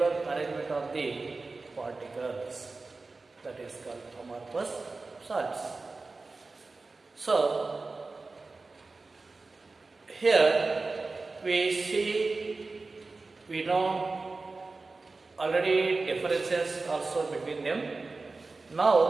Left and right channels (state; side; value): quieter; left; 3.7 dB